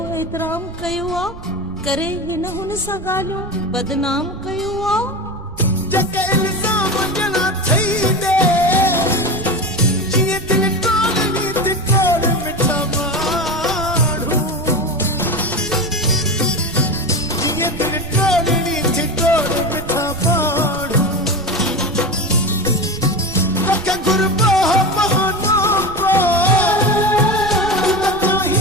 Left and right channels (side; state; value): right; noise; rumble, 15 dB below the sound